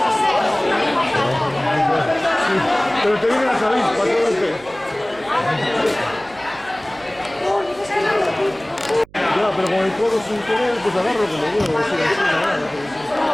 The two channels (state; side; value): noise; right; hum, 25 dB below the sound